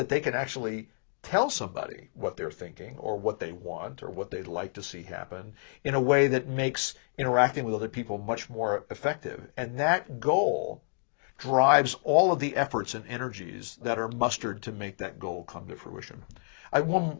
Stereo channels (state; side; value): silent; right; digital silence